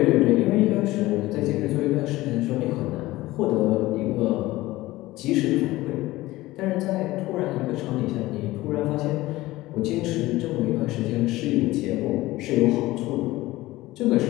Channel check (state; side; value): quieter; right; 18.1 dB